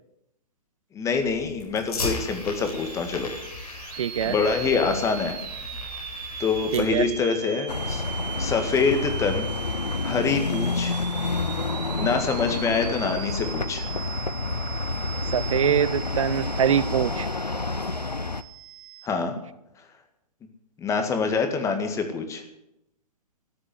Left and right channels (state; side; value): normal; both; correlation 0.02